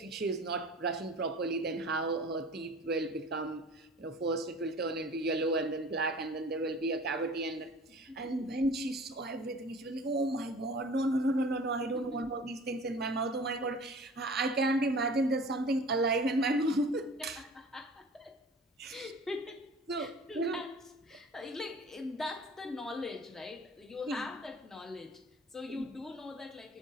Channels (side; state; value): both; normal; correlation 0.44